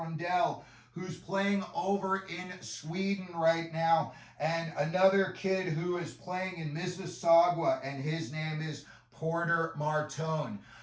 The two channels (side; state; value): both; identical; correlation 1.00